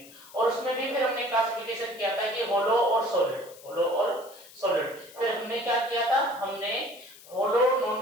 और उसमें भी फिर हमने क्लासिफिकेशन किया था कि होलो और सॉलिड, होलो और सॉलिड। फिर हमने क्या किया था, हमने hollow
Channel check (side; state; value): left; noise; hiss, 21 dB below the sound